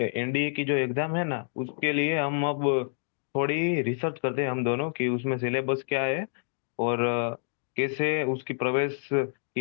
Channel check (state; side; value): silent; right; digital silence